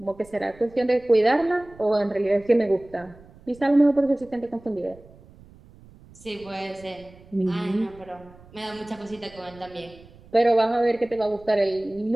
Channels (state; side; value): noise; right; rumble, 24 dB below the sound